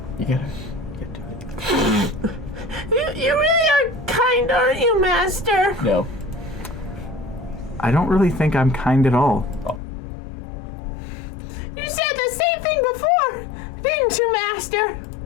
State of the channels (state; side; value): drops out; right; at 9.8 s